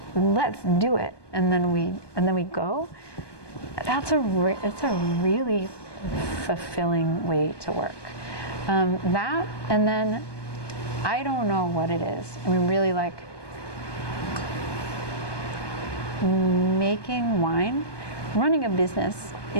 let's do it, and then we go. It's a really fulfilling way to work. That, and then I don't know what it is. I mean, really, like making wine, running a business,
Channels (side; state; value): right; late; 1.2 ms